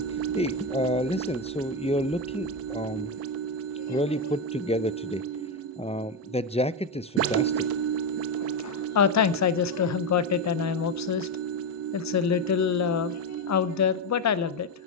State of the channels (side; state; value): both; normal; correlation 0.10